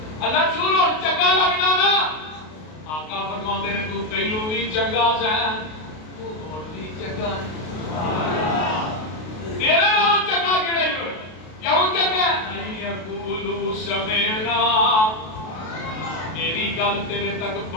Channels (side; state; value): right; late; 32 ms